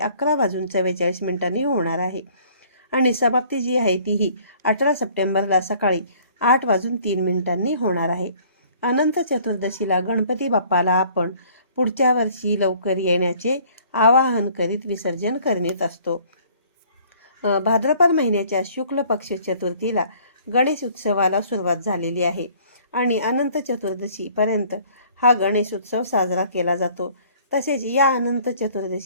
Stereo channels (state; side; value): inverted; both; correlation -0.56